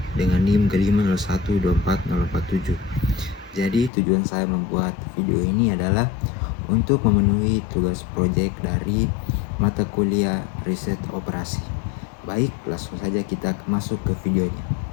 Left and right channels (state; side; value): drops out; right; at 3.9 s